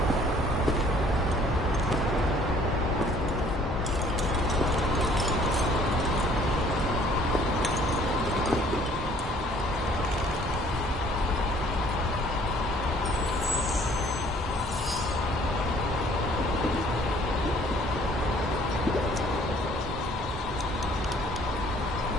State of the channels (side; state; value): both; normal; correlation 0.57